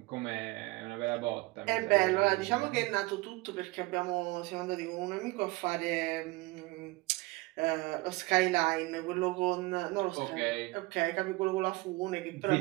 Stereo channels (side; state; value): left; quieter; 22.6 dB